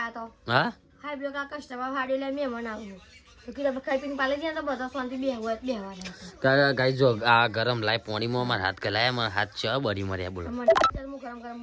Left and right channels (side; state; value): both; identical; correlation 1.00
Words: તો હા હાઈ બ્લો કા કસ્ટમર હાડી લે મેં મનાવ તો કે આપણે ખાઈ પીને પાડી જાય તો બધા શાંતિ બેહવાના ગાઈ જો આ ગરમ લાય પોણીમાં મારા હાથ ગલાયા મારા હાથ છે બળી મર્યા બોલો મને ચાલ હું ગરમ ગરમ